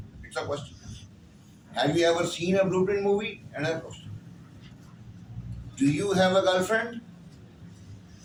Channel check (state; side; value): identical; both; correlation 1.00